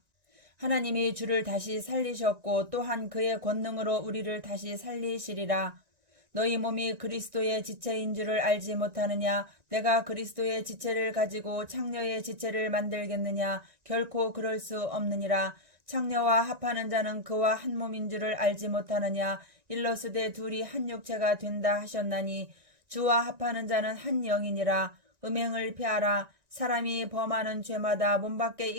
하나님이 주를 다시 살리셨고 또한 그의 권능으로 우리를 다시 살리시리라. 너희 몸이 그리스도의 지체인 줄을 알지 못하느냐. 내가 그리스도의 지체를 가지고 창녀의 지체를 만들겠느냐. 결코 그럴 수 없느니라. 창녀와 합하는 자는 그와 한 몸인 줄을 알지 못하느냐. 일러스되 둘이 한 육체가 된다 하셨나니 주와 합하는 자는 한 영이니라. 음행을 피하라. 사람이 범하는 죄마다 몸 밖에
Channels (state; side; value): late; left; 1.9 ms